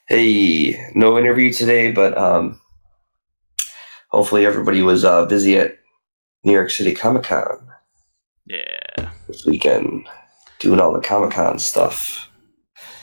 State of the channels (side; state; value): both; inverted; correlation -1.00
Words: Hey, no interview today, but hopefully everybody was busy at New York City Comic-Con. Yeah. This weekend, doing all the Comic-Con stuff.